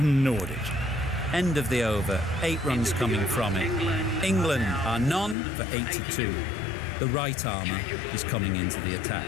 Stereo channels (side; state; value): right; drops out; at 5.4 s